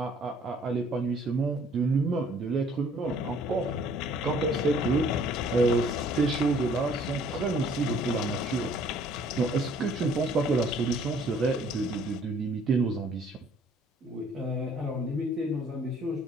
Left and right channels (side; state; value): both; normal; correlation 0.58